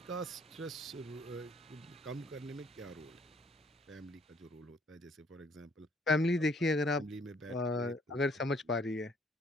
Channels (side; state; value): both; normal; correlation 0.63